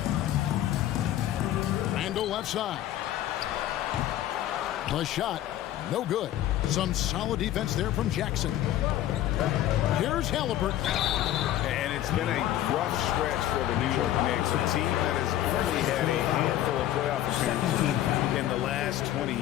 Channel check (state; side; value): quieter; right; 12.9 dB